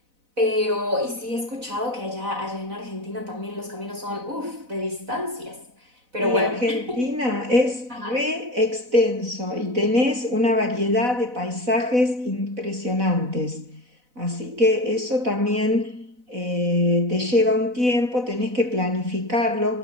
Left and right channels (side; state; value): left; late; 4.0 ms